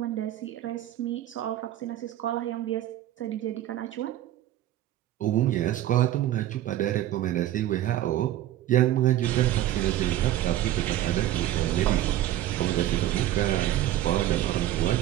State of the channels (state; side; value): quieter; left; 13.3 dB